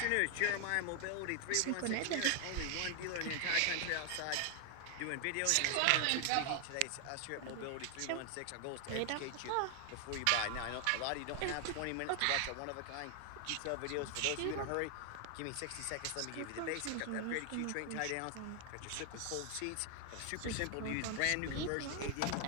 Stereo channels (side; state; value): both; different; correlation 0.00